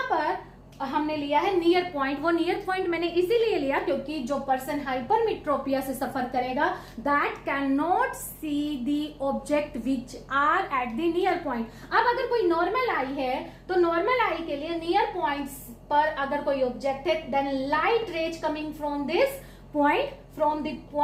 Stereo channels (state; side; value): identical; both; correlation 1.00